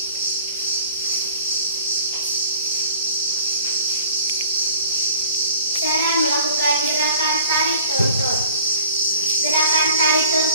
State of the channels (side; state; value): both; inverted; correlation -0.48